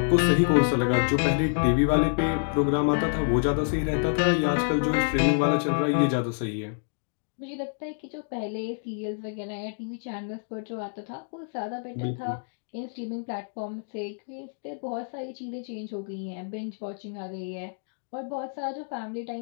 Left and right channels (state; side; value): silent; right; digital silence